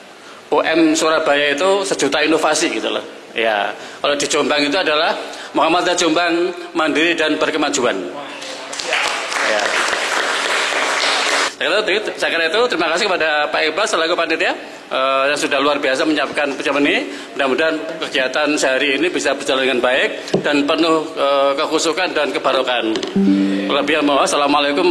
UM Surabaya itu sejuta inovasi gitu loh. Ya, kalau di Jombang itu adalah Muhammadiyah Jombang mandiri dan berkemajuan. Ya. Saya kira itu terima kasih kepada Pak Iqbal selaku panitia yang sudah luar biasa menyiapkan pertemuan ini. Mudah-mudahan kegiatan sehari ini bisa berjalan dengan baik dan penuh kekhusyukan dan kebarokan. Assalamualaikum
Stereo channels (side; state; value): both; identical; correlation 1.00